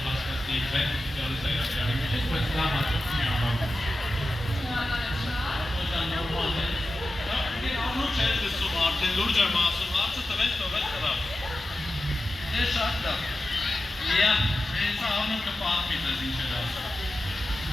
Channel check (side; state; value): both; normal; correlation 0.93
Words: հասկացնի ձեն սոցիալիզայացիանի մեջ, բայց դա հաճախ մի ամառում։ Դա նորմալ է։ Անոչ է դեսում արդեն լուրջ եմ ասում, հարցը տվեց տղա։ Դե շատ լավ։ Հենց անոչ կպատմի ձեզ ինչ էր ասում։